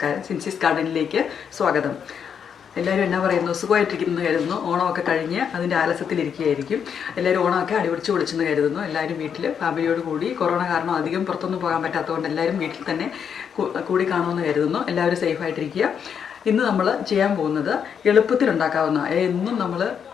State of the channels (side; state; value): right; quieter; 7.5 dB